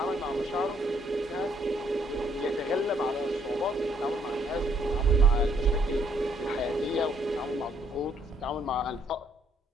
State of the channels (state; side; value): normal; both; correlation 0.68